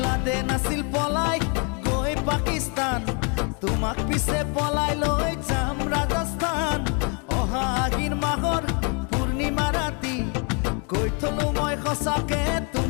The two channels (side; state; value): right; quieter; 36.4 dB